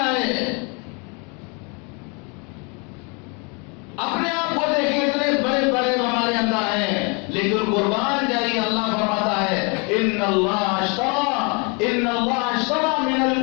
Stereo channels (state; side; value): quieter; right; 32.6 dB